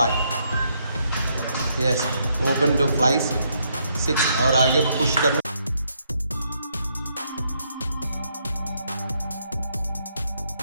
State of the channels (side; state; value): both; inverted; correlation -0.74